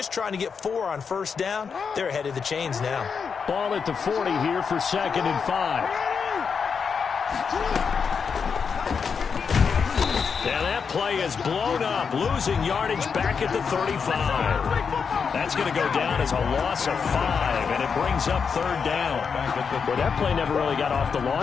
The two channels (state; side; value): quieter; right; 6.0 dB